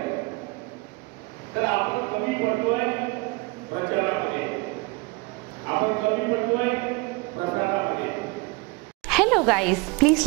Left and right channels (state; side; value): quieter; left; 25.8 dB